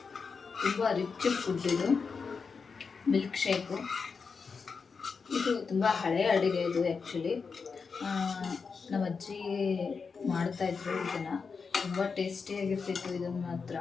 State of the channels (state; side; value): quieter; right; 5.2 dB